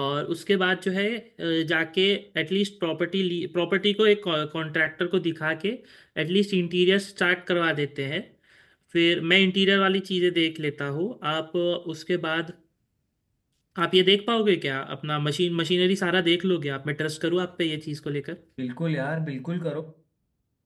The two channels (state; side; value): identical; both; correlation 1.00